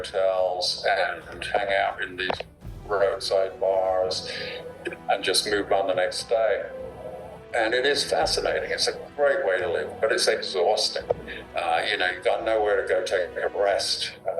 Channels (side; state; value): both; identical; correlation 1.00